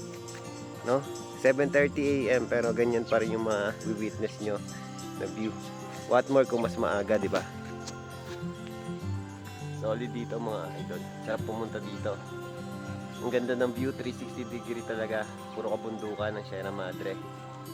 no? 7:30 AM pero ganyan pa rin yung ma-witness nyo na view. What more kung mas maaga, di ba? Solid dito mga idol. Sarap pumunta dito. Ang ganda ng view, 360 degree talaga. Puro kabundukan ng Sierra Madre.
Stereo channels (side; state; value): both; identical; correlation 1.00